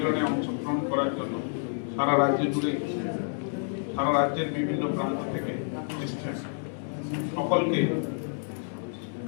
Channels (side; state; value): right; silent; digital silence